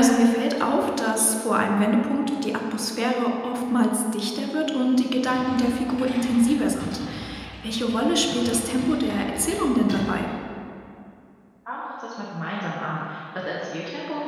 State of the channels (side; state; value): both; identical; correlation 1.00